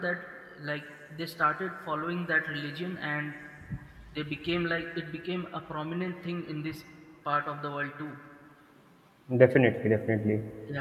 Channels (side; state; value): both; identical; correlation 1.00